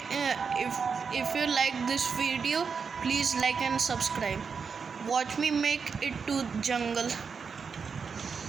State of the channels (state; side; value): quieter; left; 5.7 dB